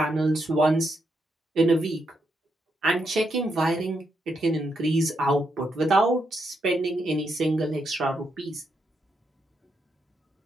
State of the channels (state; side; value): normal; both; correlation 0.81